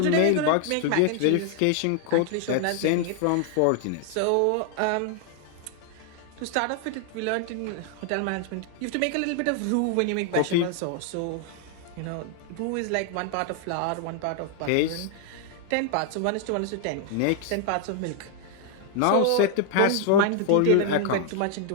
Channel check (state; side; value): different; both; correlation 0.00